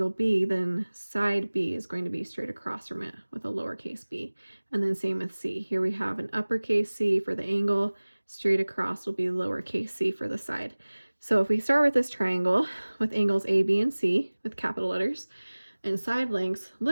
B, then side B is going to be straight across from it with a lowercase b. And then same with C. Here we have an uppercase C for the angle, straight across will be lowercase c for the side. So if we start with this triangle with angles A, B, and C with capital letters, and side lengths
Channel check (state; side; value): inverted; both; correlation -1.00